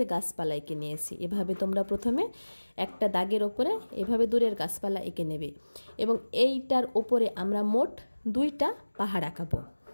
গাছপালা এঁকে নিয়েছি। এভাবে তোমরা প্রথমে একটা দাগের ওপরে এভাবে দূরের গাছপালা এঁকে নেবে এবং এইটার ওপরে আমরা মোট 2টা পাহাড় আঁকাবো।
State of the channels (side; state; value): both; inverted; correlation -1.00